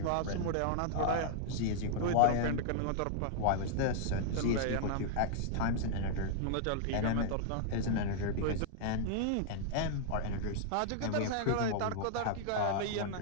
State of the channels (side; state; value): both; different; correlation -0.01